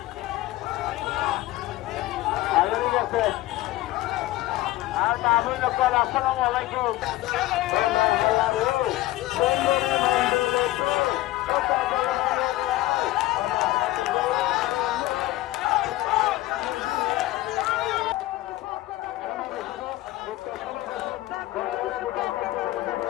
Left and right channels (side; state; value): right; quieter; 16.9 dB